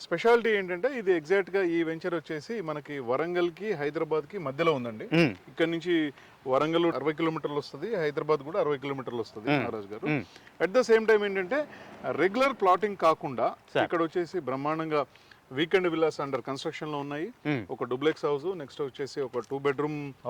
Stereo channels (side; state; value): both; identical; correlation 1.00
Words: స్పెషాలిటీ ఏంటంటే ఇది ఎగ్జాక్ట్ గా ఈ వెంచర్ వచ్చేసి మనకి వరంగల్ కి, హైదరాబాద్ కి మధ్యలో ఉందండి. ఇక్కడ నుంచి వరంగల్ 60 కిలోమీటర్లు వస్తుంది, హైదరాబాద్ కూడా 60 కిలోమీటర్లు వస్తుంది నారాజ్ గారు. అట్ ద సేమ్ టైం ఏంటంటే రెగ్యులర్ ప్లాటింగ్ కాకుండా ఇక్కడ వచ్చేసి బ్రహ్మాండంగా వీకెండ్ విల్లాస్ అండర్ కన్స్ట్రక్షన్ లో ఉన్నాయి. ఒక డూప్లెక్స్ హౌస్, నెక్స్ట్ వచ్చేసి ఒక 2 బెడ్రూమ్